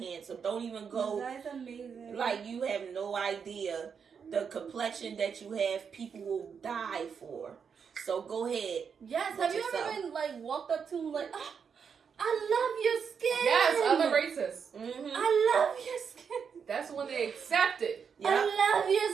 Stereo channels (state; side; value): quieter; left; 6.6 dB